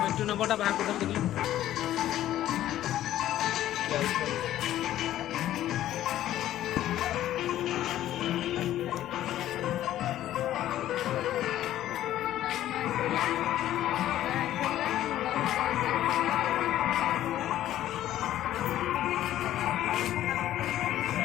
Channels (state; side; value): quieter; right; 13.0 dB